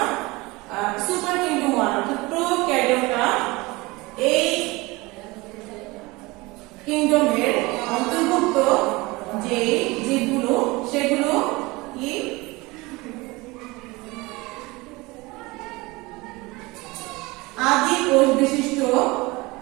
সুপার কিংডম 1 অর্থাৎ প্রোক্যারিওটা এই কিংডমের অন্তর্ভুক্ত যে জীবগুলো সেগুলো কি আদি কোষ বিশিষ্ট,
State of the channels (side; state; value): left; quieter; 22.9 dB